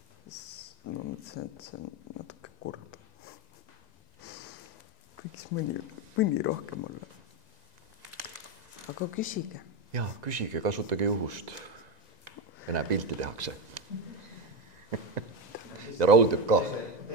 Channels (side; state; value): left; late; 2.0 ms